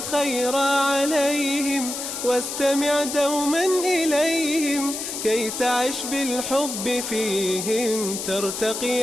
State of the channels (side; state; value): left; noise; hiss, 5 dB below the sound